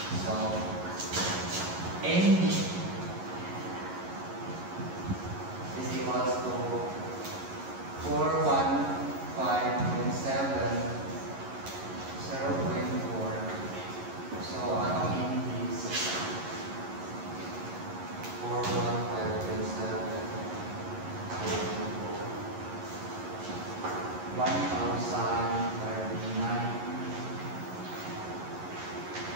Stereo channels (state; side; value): late; left; 11 ms